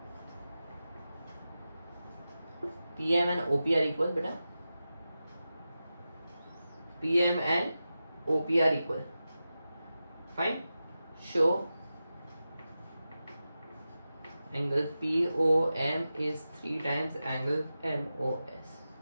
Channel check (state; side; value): inverted; both; correlation -0.93